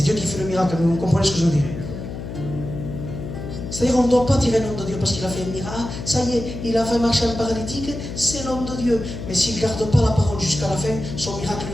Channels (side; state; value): left; noise; hum, 8 dB below the sound